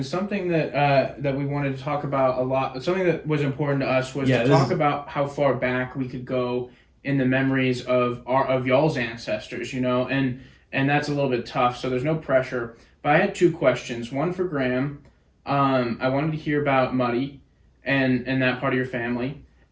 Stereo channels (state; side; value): identical; both; correlation 1.00